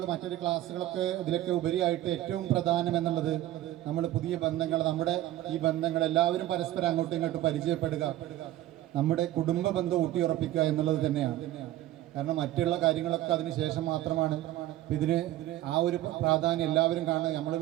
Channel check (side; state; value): left; quieter; 14.7 dB